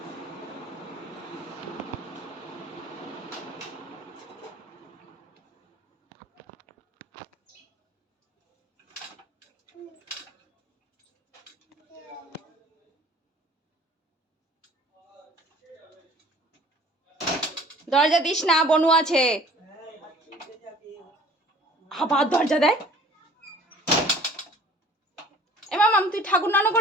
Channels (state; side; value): normal; both; correlation 0.50